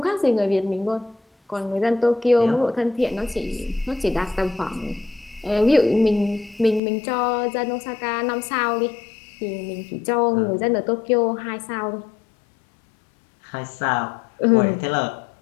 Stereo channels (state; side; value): drops out; right; at 6.8 s